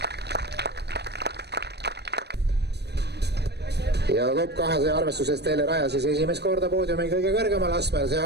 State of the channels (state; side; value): late; left; 0.48 ms